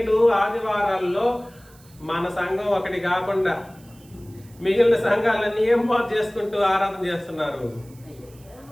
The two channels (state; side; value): noise; right; hiss, 27 dB below the sound